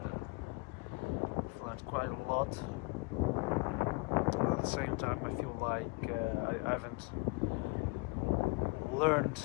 I've learned quite a lot. At the same time, I feel like I haven't learned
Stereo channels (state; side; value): quieter; right; 27.3 dB